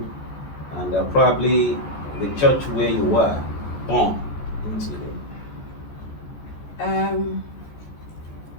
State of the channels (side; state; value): right; late; 14 ms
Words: and probably the church where you were born into?